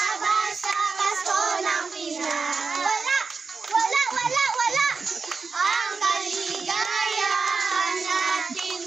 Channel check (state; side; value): quieter; left; 4.7 dB